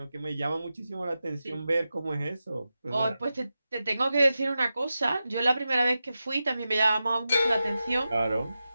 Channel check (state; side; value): inverted; both; correlation -0.92